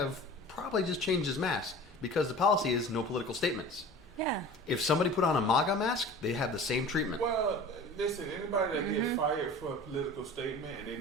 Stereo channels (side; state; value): both; normal; correlation 0.39